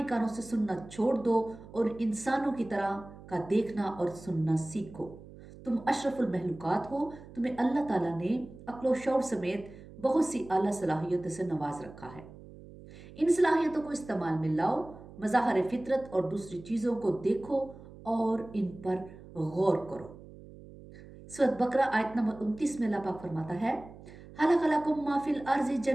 کانوں سے سننا چھوڑ دو، اور انسانوں کی طرح کا دیکھنا اور سننا سیکھو۔ تم اشرف المخلوقات ہو، تمہیں اللہ تعالیٰ نے عقل و شعور سمیت بہت سی اعلیٰ صلاحیتوں سے نواز رکھا ہے۔ ان صلاحیتوں کو استعمال میں لاؤ، مظاہر فطرت اور دوسری چیزوں کو دیکھو اور ان پر غور کرو۔ سورۃ بقرہ آیت نمبر 29 میں اللہ پاک فرماتا ہے، خلق لکم ما فی الارض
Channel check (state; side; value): noise; right; hum, 18 dB below the sound